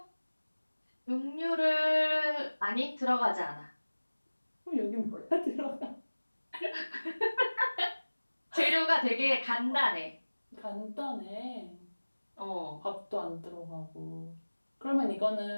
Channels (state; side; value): inverted; both; correlation -1.00